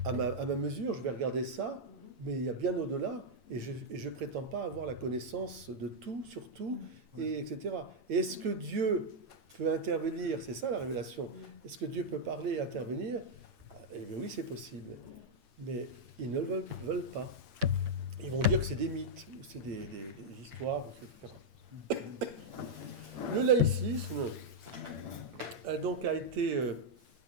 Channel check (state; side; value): late; left; 8.7 ms